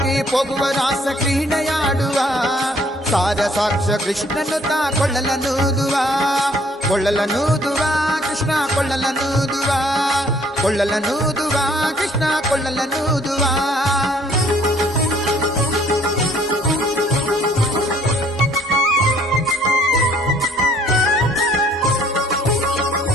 ಹೋಗುವ ರಾಸ ಕ್ರೀಡೆಯಾಡುವ ಸಾರ ಸಾಕ್ಷ ಕೃಷ್ಣನು ತಾ ಕೊಳ್ಳಲನೂದುವ ಕೊಳ್ಳಲನೂದುವ ಕೃಷ್ಣ ಕೊಳ್ಳಲನೂದುವ ಕೊಳ್ಳಲನೂದುವ ಕೃಷ್ಣ ಕೊಳ್ಳಲನೂದುವ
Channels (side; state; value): both; normal; correlation 0.60